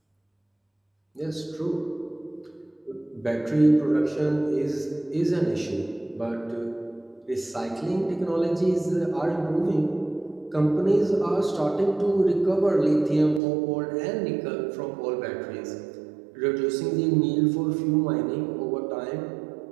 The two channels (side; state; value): left; drops out; at 13.4 s